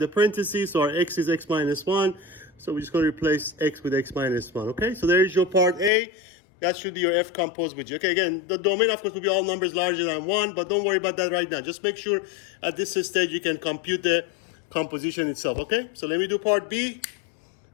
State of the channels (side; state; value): right; drops out; at 5.9 s